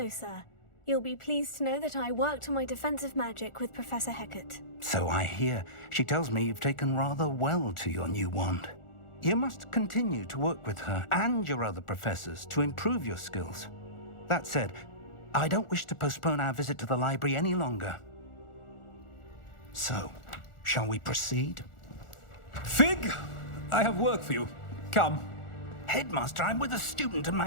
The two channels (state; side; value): late; right; 1.4 ms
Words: sir. You'll be pleased to know that I worked on my defensive magic with Professor Hecat. So I hear. She tells me you've taken rather well to your new wand. You must continue to work with her and your other professors to improve your skills. That said, I don't wish to postpone our visit to the library any longer. So, shall we proceed? Fig, I have work for you. Come. Headmaster, I'm with a student and